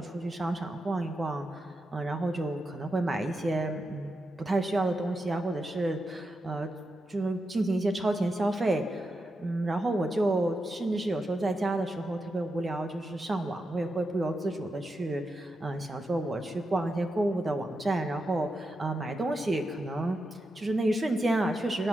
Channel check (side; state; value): both; normal; correlation 0.87